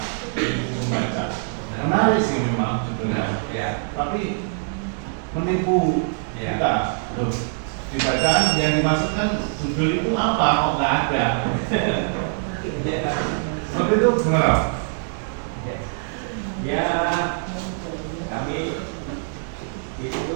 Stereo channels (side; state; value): left; silent; digital silence